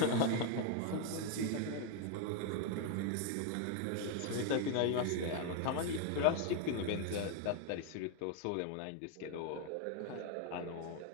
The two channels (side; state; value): both; different; correlation 0.01